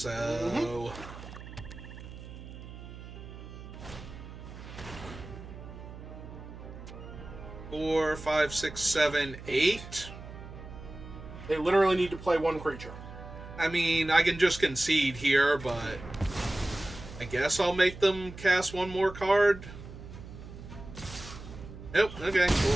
Mm-hmm. 4, 5, 6, 7, 8. They literally need to play 1 creature. I mean, I can just concede here, but I guess I'll make them cast 1 more card. Nope, okay,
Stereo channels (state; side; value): noise; right; hum, 13 dB below the sound